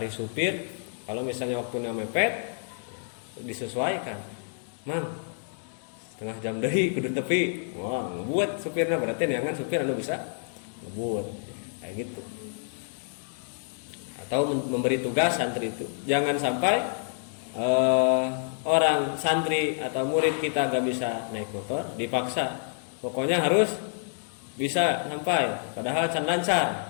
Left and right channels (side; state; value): right; silent; digital silence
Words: supir, kalau misalnya waktunya mepet disesuaikan, mang setengah jam deui kudu tepi, wah ngebuat supirnya, berarti neangan supir anu bisa ngebuat kayak gitu. Atau memberi tugas santri itu, jangan sampai orang santri atau murid kita gak bisa naik motor dipaksa, pokoknya harus bisa sampai, padahal can